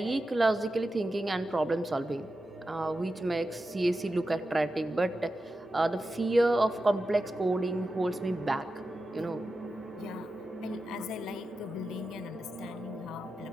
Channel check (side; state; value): both; normal; correlation 0.91